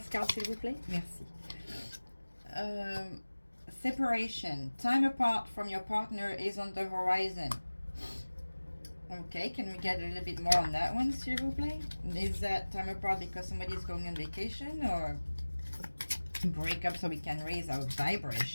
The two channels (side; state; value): both; inverted; correlation -1.00